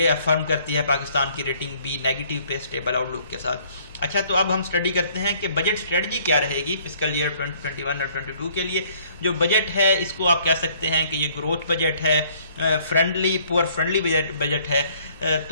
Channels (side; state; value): both; inverted; correlation -0.60